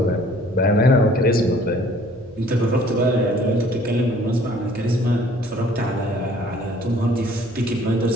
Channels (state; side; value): noise; right; hum, 24 dB below the sound